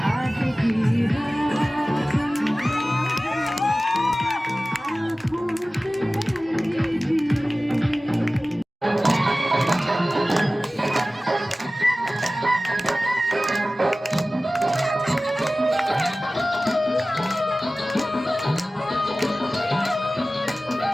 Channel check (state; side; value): normal; both; correlation 0.97